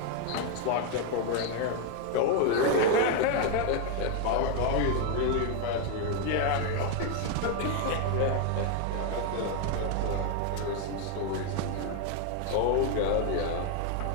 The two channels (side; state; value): both; different; correlation 0.01